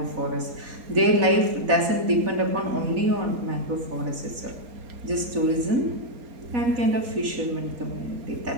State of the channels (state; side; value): late; left; 4.1 ms